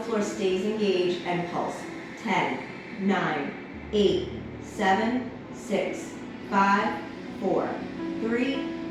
floor stays engaged and pulse. 10, 9, 8, 7, 6, 5, 4, 3,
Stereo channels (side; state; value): both; identical; correlation 1.00